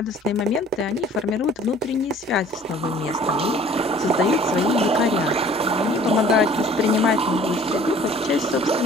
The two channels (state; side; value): normal; both; correlation 0.52